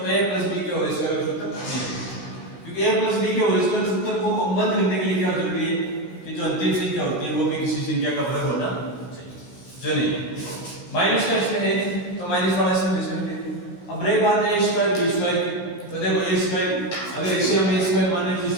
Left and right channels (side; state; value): right; late; 16 ms